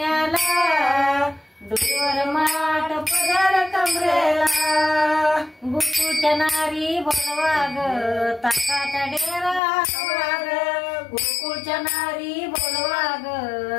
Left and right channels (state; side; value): drops out; right; at 9.6 s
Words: डोईवर माठ पदर कमरेला गोकुळच्या नारी बोलवा ग ताकाचा डेरा हलवा ग गोकुळच्या नारी बोलवा